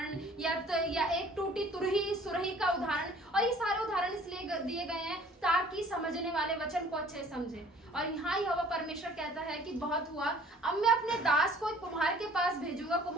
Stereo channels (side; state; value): both; normal; correlation 0.53